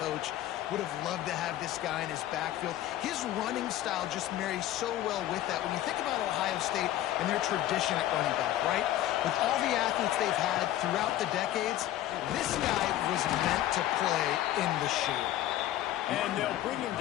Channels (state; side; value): quieter; right; 13.6 dB